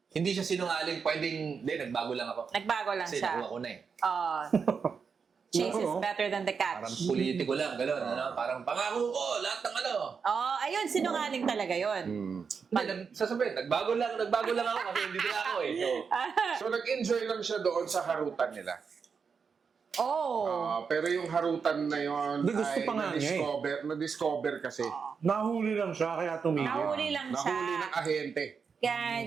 Hindi siya sinungaling. Pwedeng... Hindi, nagbago lang ako. Nagbago lang Kasi siya. nakuha ko na eh. Chase is Oo. better than the catch. Parang politiko lang. Gano'n. Parang pangako ko. Lahat ng ano. Ayun, sinungaling talaga yun. Hindi, sasabihin, nagbago lang ako kasi hindi na ako eh. So, So nag-enjoy lang siya doon sa harutan nila. Oh. Pero yung harutan na yon Hindi, gusto ay pa nga niya na-discover kasi. Nahuli lang siya, kaya tumigil. Nahuli lang siya. Nahuli ng ahente. Kaya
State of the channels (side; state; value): left; quieter; 5.8 dB